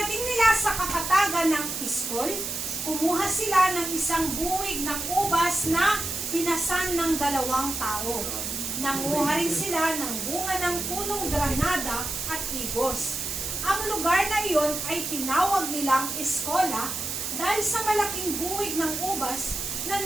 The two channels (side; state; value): right; noise; hiss, 4 dB below the sound